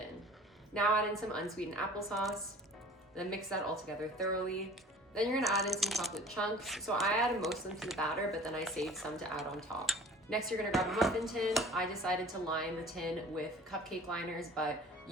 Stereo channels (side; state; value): both; normal; correlation 0.46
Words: Now add in some unsweetened applesauce, then mix that all together thoroughly. Then you're gonna add in some chocolate chunks. So I added most of them to the batter, but then I saved some to add on top. Next, you're gonna grab a muffin tin. I decided to line the tin with cupcake liners, but